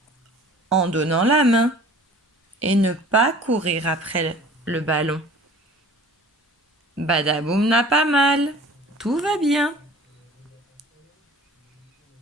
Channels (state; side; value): normal; both; correlation 0.46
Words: en donnant la main et ne pas courir après le ballon. Badaboum n'a pas mal, tout va bien.